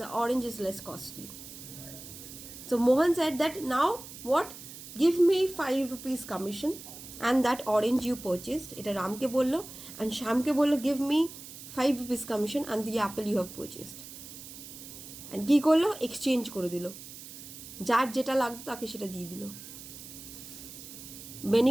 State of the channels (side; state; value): right; noise; hiss, 14 dB below the sound